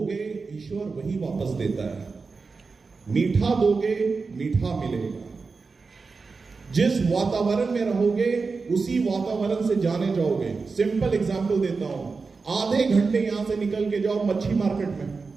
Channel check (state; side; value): quieter; left; 4.5 dB